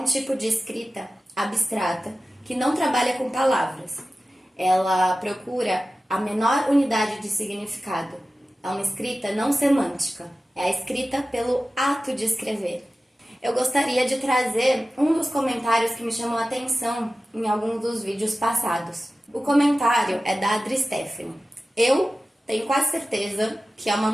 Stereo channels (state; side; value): normal; both; correlation 0.95